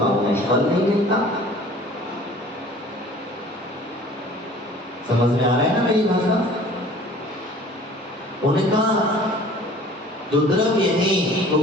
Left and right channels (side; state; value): both; normal; correlation 0.48